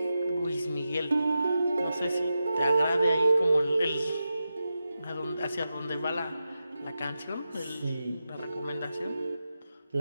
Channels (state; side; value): inverted; both; correlation -0.90